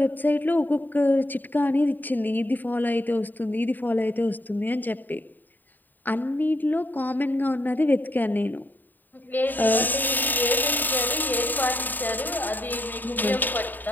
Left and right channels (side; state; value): right; late; 0.089 ms